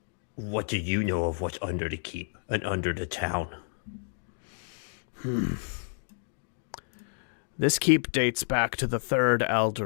what do you know of what's under the keep and under the town? This keep dates back to the Third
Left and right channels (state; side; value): silent; right; digital silence